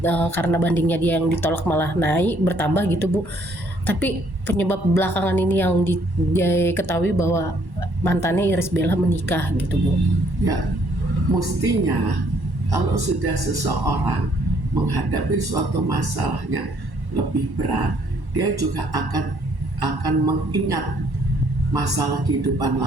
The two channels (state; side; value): late; left; 1.1 ms